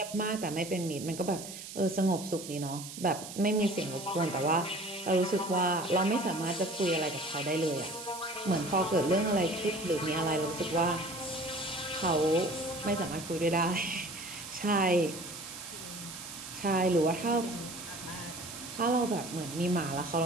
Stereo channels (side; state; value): right; noise; hiss, 11 dB below the sound